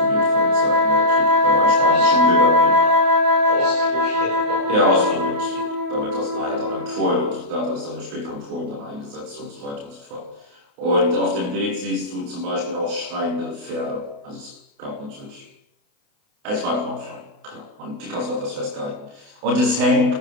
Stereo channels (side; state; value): left; late; 28 ms